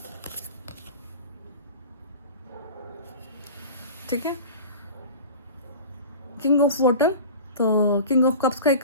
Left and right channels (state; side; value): inverted; both; correlation -0.36